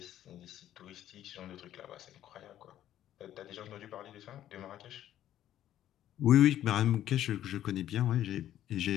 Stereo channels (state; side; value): quieter; right; 12.0 dB